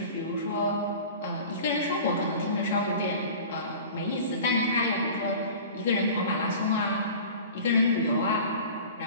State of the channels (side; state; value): both; inverted; correlation -0.40